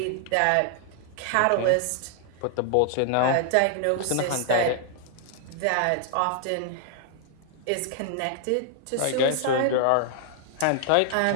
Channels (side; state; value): both; different; correlation 0.00